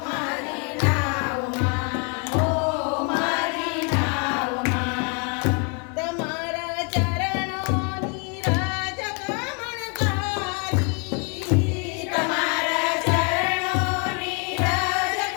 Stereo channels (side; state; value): right; quieter; 36.1 dB